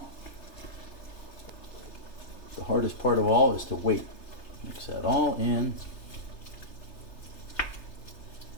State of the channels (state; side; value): late; right; 3.3 ms